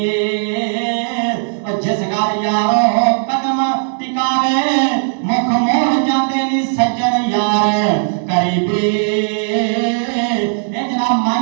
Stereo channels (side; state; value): left; silent; 64 dB below the other